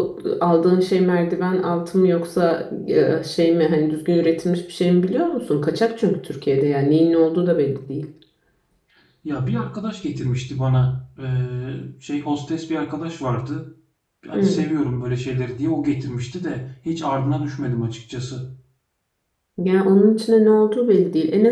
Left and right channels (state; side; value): identical; both; correlation 1.00